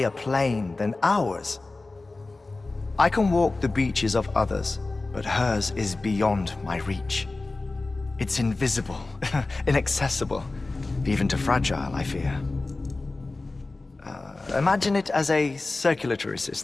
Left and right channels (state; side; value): quieter; right; 3.3 dB